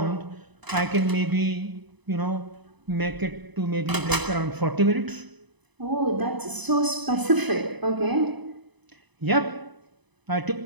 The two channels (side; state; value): left; late; 1.0 ms